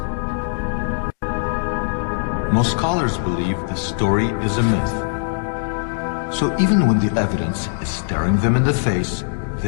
Most scholars believe this story is a myth. So even when the evidence is staring them in the face,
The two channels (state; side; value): silent; right; digital silence